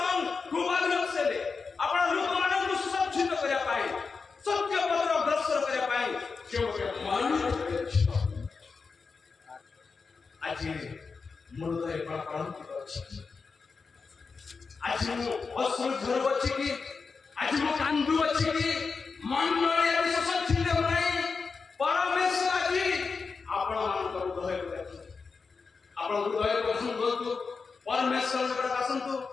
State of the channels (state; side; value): quieter; right; 4.8 dB